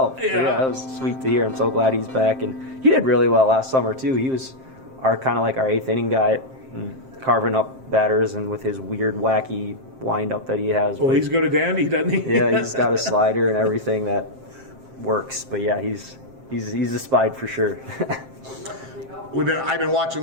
Yeah. That was sweet to hear. I'm so glad he's back, and he did really well last summer too. He was our kind of like our eighth inning guy, carving up batters, and with his weird, wacky wind-up that he has. Well, But he's good at Dandy, doesn't he? yeah, he's got a slider and everything that works. But yeah, he's a Spide for sure. I've been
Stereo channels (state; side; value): late; left; 7.6 ms